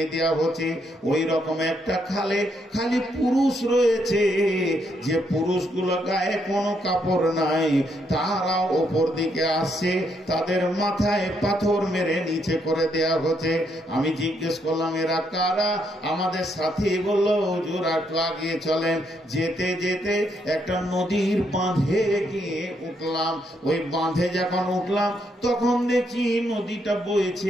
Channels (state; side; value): normal; both; correlation 0.75